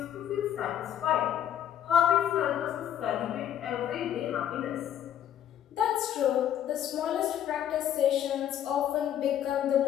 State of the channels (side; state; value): right; quieter; 10.4 dB